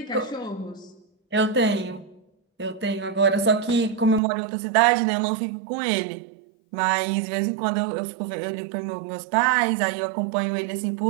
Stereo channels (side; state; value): left; drops out; at 4.2 s